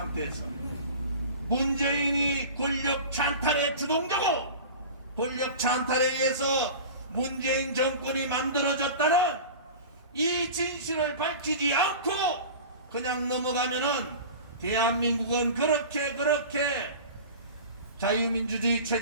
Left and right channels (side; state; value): both; inverted; correlation -0.36